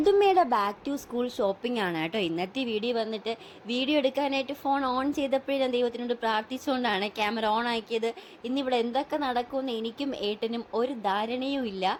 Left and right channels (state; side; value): identical; both; correlation 1.00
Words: ബാക്ക് ടു സ്കൂൾ ഷോപ്പിംഗ് ആണ് കേട്ടോ ഇന്നത്തെ വീഡിയോ. വന്നിട്ട് വീഡിയോ എടുക്കാനായിട്ട് ഫോൺ ഓൺ ചെയ്തപ്പോഴേ ഞാൻ ദൈവത്തിനോട് പ്രാർത്ഥിച്ചുകൊണ്ടാണ് ക്യാമറ ഓൺ ആക്കിയത്. ഇന്നിവിടെ എന്തൊക്കെ നടക്കുമെന്ന് എനിക്കും ഏട്ടനും ഒരു ധാരണയും ഇല്ല.